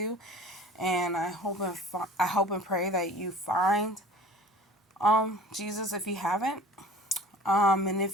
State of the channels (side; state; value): both; normal; correlation 0.44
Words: And I hope and pray that you find Jesus if you haven't. And